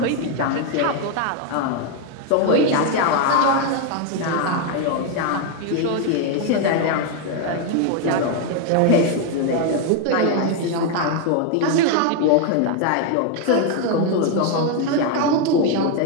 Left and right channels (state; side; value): different; both; correlation 0.01